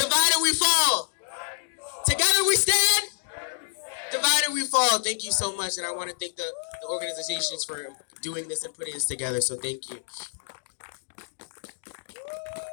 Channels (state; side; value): silent; right; digital silence